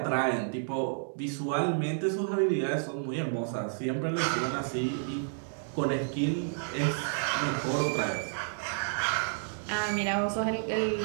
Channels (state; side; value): silent; left; digital silence